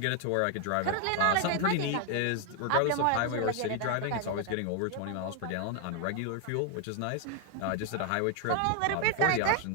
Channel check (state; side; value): different; both; correlation 0.00